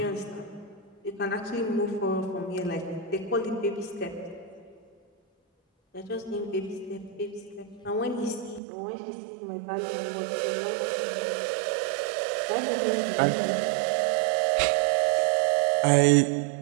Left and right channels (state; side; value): drops out; left; at 8.6 s